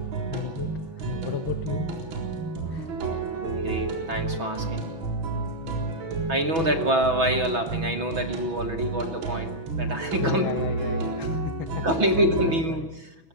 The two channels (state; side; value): late; left; 6.1 ms